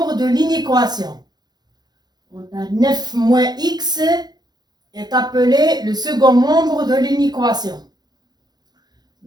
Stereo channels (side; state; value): left; late; 0.20 ms